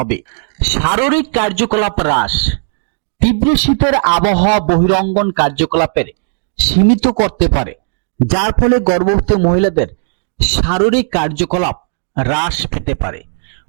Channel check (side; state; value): left; silent; digital silence